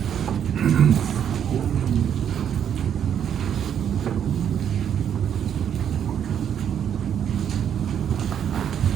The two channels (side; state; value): left; quieter; 8.9 dB